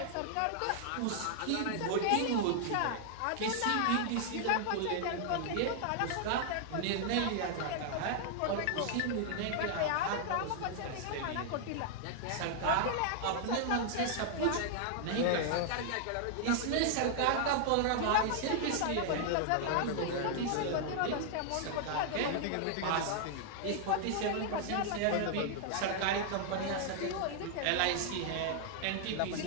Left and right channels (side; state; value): both; different; correlation 0.00